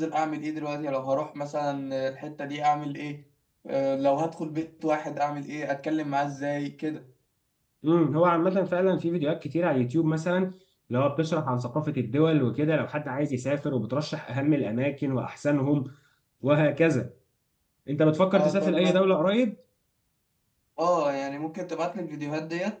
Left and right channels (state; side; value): identical; both; correlation 1.00